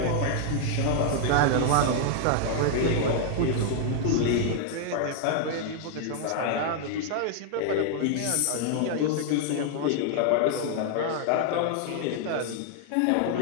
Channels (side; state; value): both; different; correlation 0.00